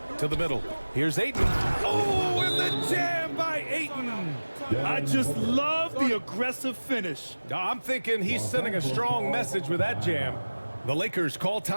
To the middle. Here's Ayton. Oh, and the jam by Ayton. I just love the aggressive finish. I'm thinking he's sending a strong message with that jam. The Lakers call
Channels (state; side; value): inverted; both; correlation -1.00